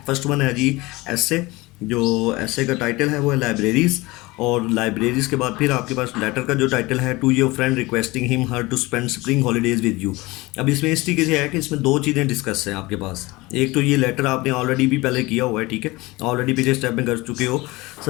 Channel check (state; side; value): quieter; right; 21.8 dB